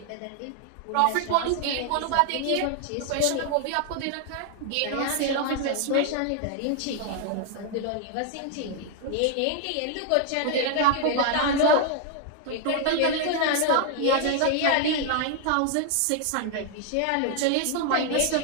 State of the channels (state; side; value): different; both; correlation 0.00